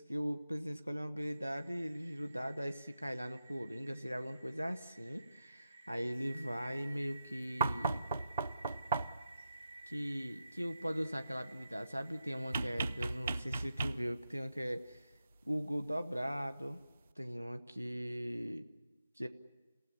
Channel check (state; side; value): inverted; both; correlation -0.89